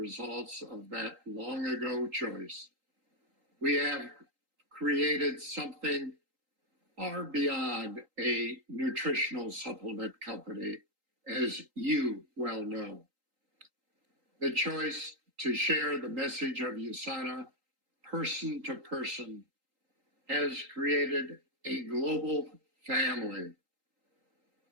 of that long ago choice. We have created something far beyond a nutritional supplement company, as you well know. The choice to share the message of USANA person to person has created a global family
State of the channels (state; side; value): late; left; 3.8 ms